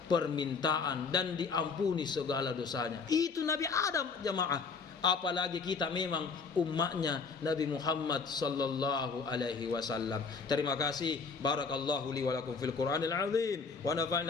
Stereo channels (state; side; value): quieter; right; 5.0 dB